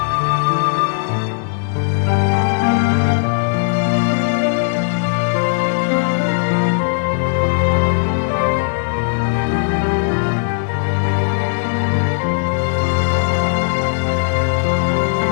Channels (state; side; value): silent; right; digital silence